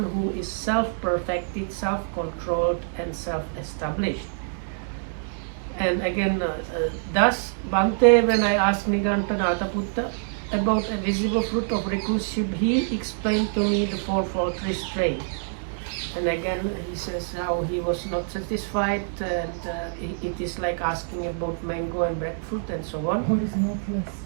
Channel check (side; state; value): left; silent; digital silence